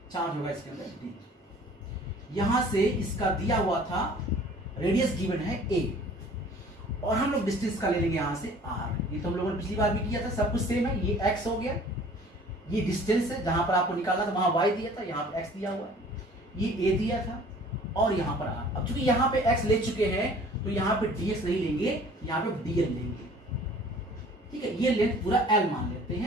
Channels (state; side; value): normal; both; correlation 0.50